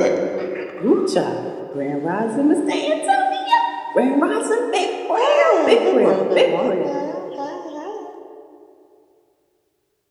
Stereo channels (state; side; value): identical; both; correlation 1.00